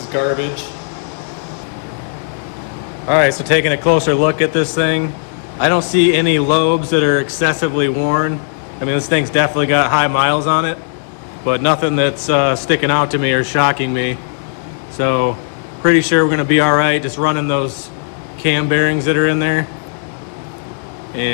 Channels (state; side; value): silent; right; digital silence